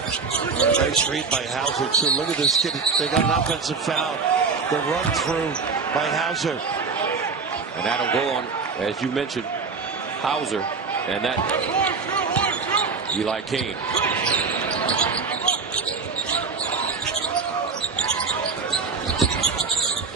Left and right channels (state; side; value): quieter; left; 4.9 dB